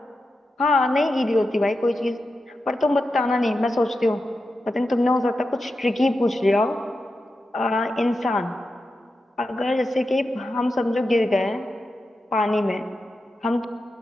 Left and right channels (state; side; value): normal; both; correlation 0.90